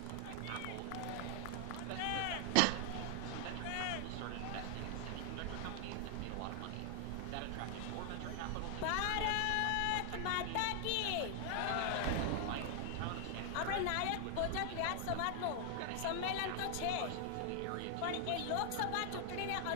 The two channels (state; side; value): different; both; correlation 0.00